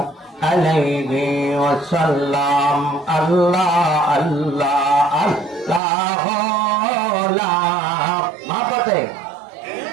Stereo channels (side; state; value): left; drops out; at 5.8 s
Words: আলাইহি ওয়াসাল্লাম। আল্লাহ আল্লাহ আল্লাহ লা মাপাতে